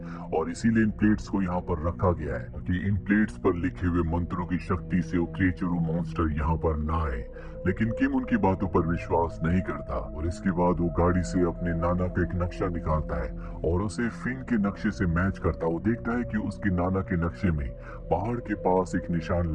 और इसीलिए इन प्लेट्स को यहाँ पर रखा गया है कि इन प्लेट्स पर लिखे हुए मंत्रों की शक्ति से वो क्रिएचर वो मॉन्स्टर यहाँ पर ना आए। लेकिन किम उनकी बातों पर विश्वास नहीं करता और इसके बाद वो गाड़ी से अपने नाना का एक नक्शा निकालता है और उसे फिन के नक्शे से मैच करता। वो देखता है कि उसके नाना के नक्शे में पहाड़ के पास एक निशान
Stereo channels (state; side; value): identical; both; correlation 1.00